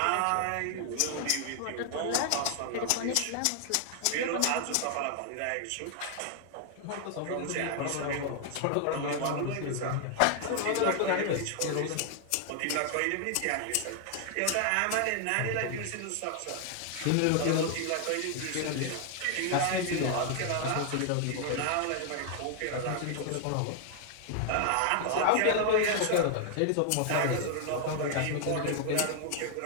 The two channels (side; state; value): both; different; correlation 0.00